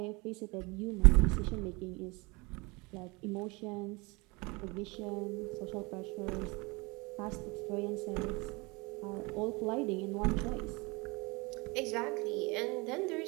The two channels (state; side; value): quieter; left; 26.4 dB